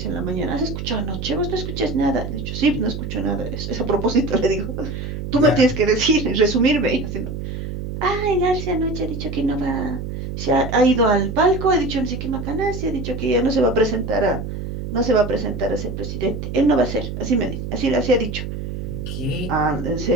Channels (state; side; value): noise; right; hum, 6 dB below the sound